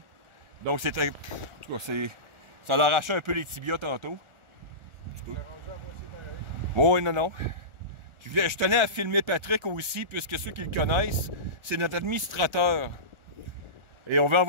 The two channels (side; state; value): left; late; 1.4 ms